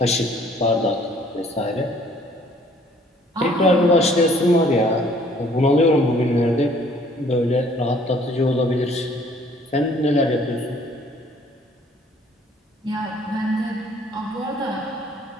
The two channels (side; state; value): both; normal; correlation 0.58